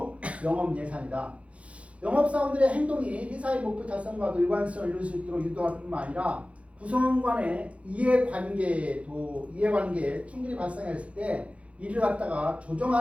영업 예산이다. 영업사원들의 행동이 회사의 목표 달성과도 일관성을 이룰 수 있도록 유도할 뿐만 아니라 구성원 간의 이해관계에 충돌이 발생했을 때 이를 갖다가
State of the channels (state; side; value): late; left; 0.063 ms